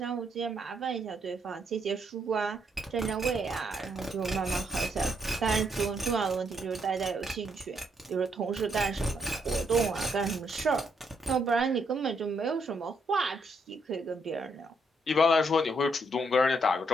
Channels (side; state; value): both; normal; correlation 0.74